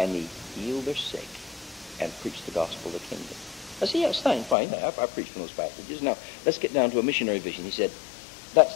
he healed their sick and preached the gospel of the kingdom. I said, yes, fine. I preached from those passages. Now, let's get down to a missionary vision. He said, that's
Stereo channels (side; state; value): right; drops out; at 4.5 s